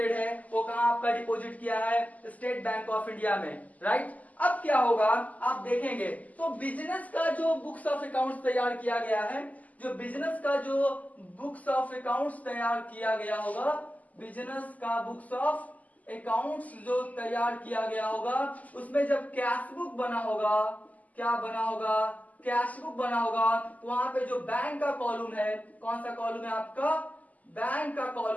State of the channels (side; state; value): right; late; 0.076 ms